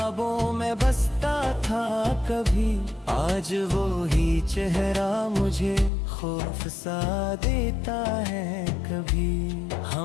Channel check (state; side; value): drops out; right; at 5.9 s